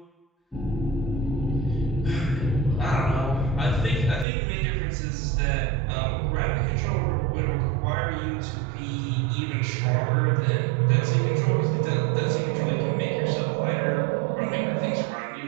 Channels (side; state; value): left; drops out; at 4.2 s